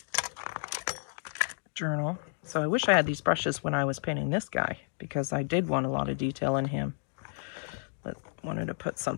journal. So I wish I had these brushes when I was painting this guy, because I did want a lot of detail in him, but wanted to put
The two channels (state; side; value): silent; right; 57 dB below the other